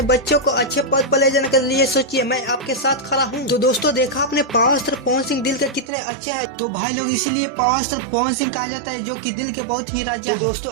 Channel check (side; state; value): left; drops out; at 5.9 s